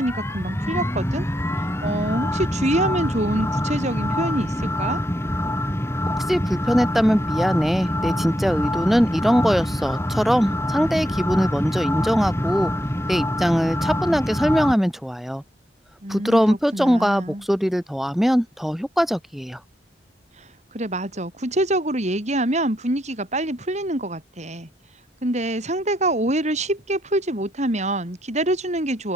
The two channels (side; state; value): both; normal; correlation 0.82